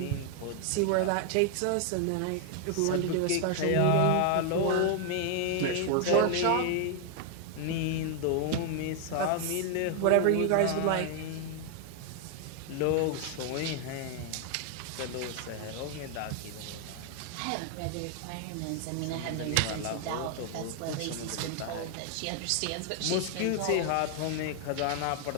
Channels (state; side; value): different; both; correlation 0.00